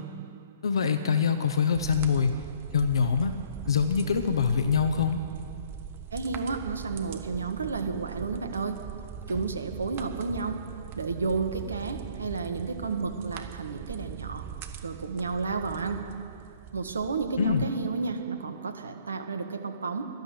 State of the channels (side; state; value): both; inverted; correlation -0.61